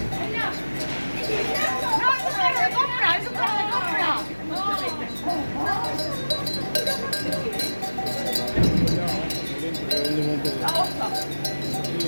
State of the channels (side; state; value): both; inverted; correlation -1.00